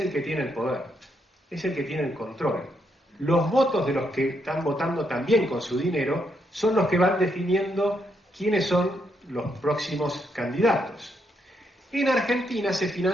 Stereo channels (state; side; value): normal; both; correlation 0.78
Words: que tiene el poder, es el que tiene el control. Los votos de los que están votando también con su dinero son los que van definiendo quiénes son los próximos candidatos. En Argentina se